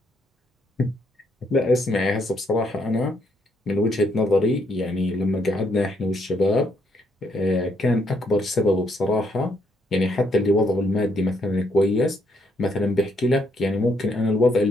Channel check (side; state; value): both; normal; correlation 0.73